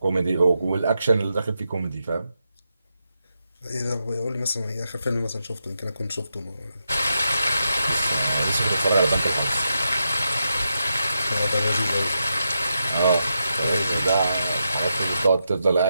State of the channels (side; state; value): both; inverted; correlation -0.86